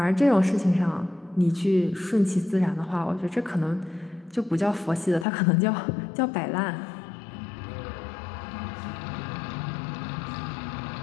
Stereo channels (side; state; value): right; drops out; at 5.2 s